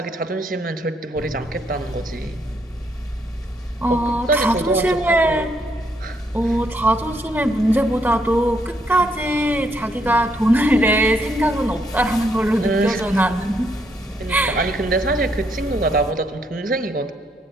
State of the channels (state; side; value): normal; both; correlation 0.74